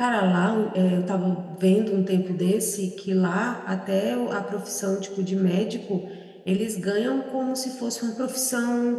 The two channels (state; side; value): identical; both; correlation 1.00